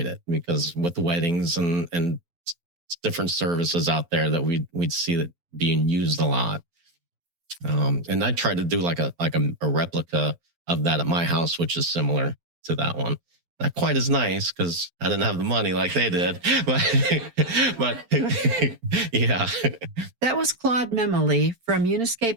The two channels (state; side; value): late; left; 12 ms